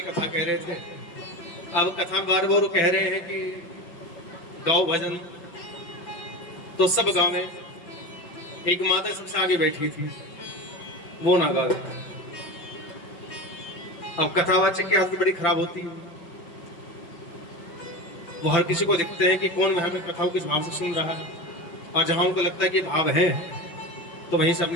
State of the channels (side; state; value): right; late; 5.9 ms